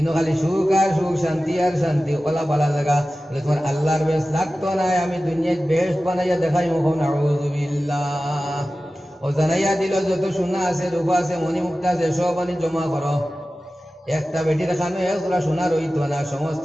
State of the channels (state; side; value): normal; both; correlation 0.95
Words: খালি সুখ আর সুখ, শান্তি আর শান্তি, ওলা বালা জায়গা। বলে তোমার আল্লাহর বেশ লাগতো নাই, আমি দুনিয়ায় বেহেশত বানাইয়া দেখাই মুখ। নাউযুবিল্লাহ। ও জানাইয়া দিল যত সোনা আছে, রূপা আছে, মণিমুক্তা আছে, সব আনি জমা করো। একটা বেটির খানো একজোড়া সোনা রইত না, সমস্ত